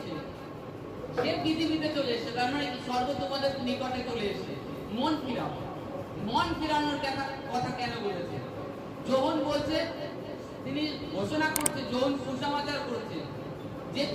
সে পৃথিবীতে চলে এসেছে। তার মানে কি স্বর্গ তোমাদের নিকটে চলে এসেছে। মন ফিরাও। মন ফিরানোর কথা কেন বলেছে? যোহন বলছে, তিনি ঘোষণা করছে, যোহন সুসমাচার করছে যে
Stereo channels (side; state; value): both; identical; correlation 1.00